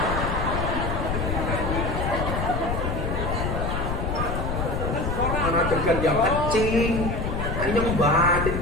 Ana degan yang kecing. Anyong batin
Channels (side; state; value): left; noise; rumble, 2 dB below the sound